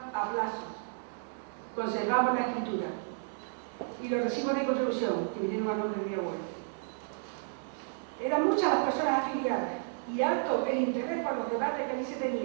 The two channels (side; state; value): left; silent; 56 dB below the other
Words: a plazo. Conservamos la escritura y los recibos de contribución que vinieron a nombre de mi abuelo. Eran muchas las personas afiliadas y alto el interés por los debates que allí se